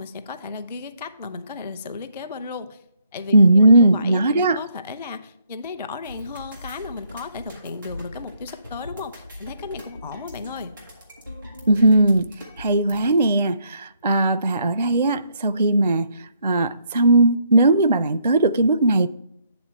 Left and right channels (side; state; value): both; inverted; correlation -0.71